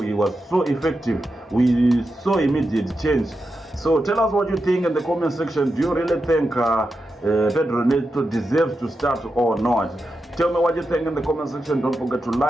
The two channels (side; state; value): both; normal; correlation 0.88